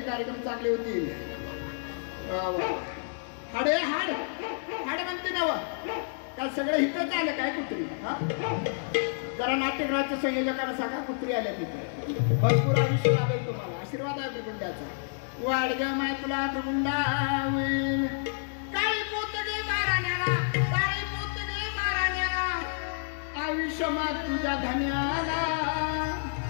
कार्यक्रम चांगले होतील. हाडे हाड हाड म्हणते ना काय सगळं इथंच आलं काय कुत्री. जरा नाट्यगृहाच्या संयोजकांना सांगा कुत्री आल्या तिथे. भरपूर आयुष्य लाभेल तुम्हाला. आशीर्वाद आहे भृगुंडाचा. वाढ ग माय तुला भृगुंडा काळी पोतगे माराण्याला काळी पोतगे माराण्याला आयुष्य माग तुझ्या धन्याला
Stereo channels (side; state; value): right; silent; 58 dB below the other